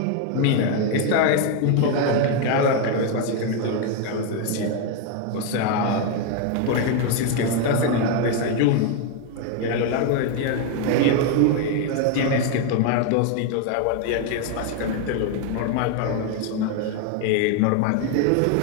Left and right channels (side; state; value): both; different; correlation 0.01